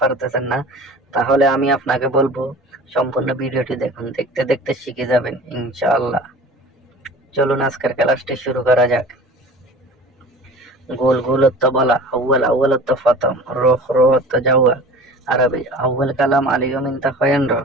না, তাহলে আমি আপনাকে বলবো সম্পূর্ণ ভিডিওটি দেখুন। দেখতে দেখতে শিখে যাবেন ইনশাআল্লাহ। চলুন আজকের ক্লাসটি শুরু করা যাক। গোল গোল অর্থ বলা, আউয়াল আউয়াল অর্থ প্রথম, রোহ রোহ অর্থ যাওয়া। আরবি আউয়াল কালাম আলিয়ুম ইনতা খয়েনর।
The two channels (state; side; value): normal; both; correlation 0.40